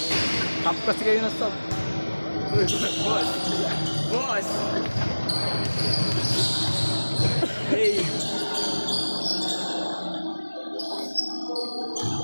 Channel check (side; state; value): both; inverted; correlation -1.00